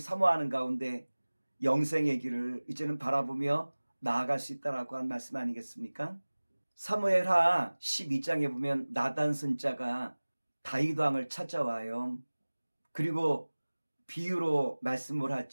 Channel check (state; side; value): inverted; both; correlation -1.00